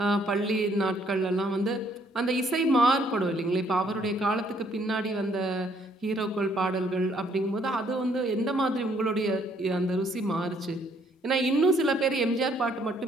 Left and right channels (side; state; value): both; normal; correlation 0.66